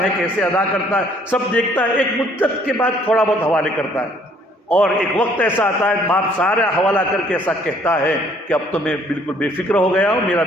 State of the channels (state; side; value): normal; both; correlation 0.61